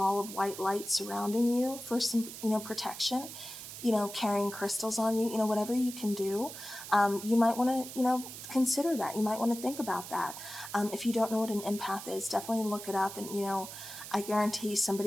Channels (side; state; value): right; noise; hiss, 11 dB below the sound